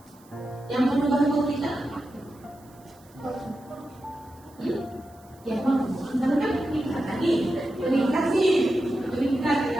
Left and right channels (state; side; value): noise; right; hiss, 29 dB below the sound